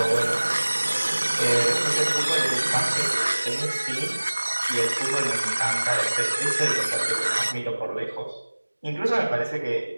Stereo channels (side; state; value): both; inverted; correlation -1.00